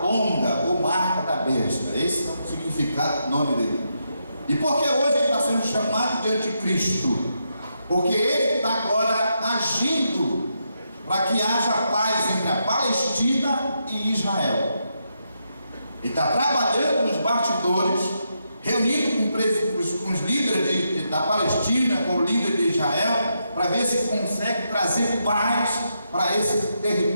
longa, ou marca da besta. Esse é o significado do nome dele. E por que hoje ele está sendo chamado de anticristo? Porque ele está agora agindo para que haja paz entre a Palestina e Israel. Ele está trabalhando nos bastidores, reunindo com os líderes da Palestina, com o líder de Israel, para ver se consegue trazer paz para esse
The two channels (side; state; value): both; inverted; correlation -0.82